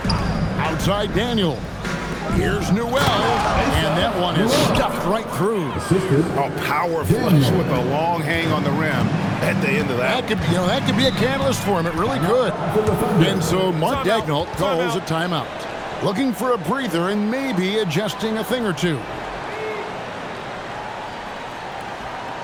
Outside Daniel. Here's Newell. And that one is stuffed right through. A power flush with a long hang on the rim at the end of that. That could be a catalyst for him. It really could. And so Mark Daigneault calls a timeout. Looking for a breather and maybe adjusting a thing or two.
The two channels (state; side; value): identical; both; correlation 1.00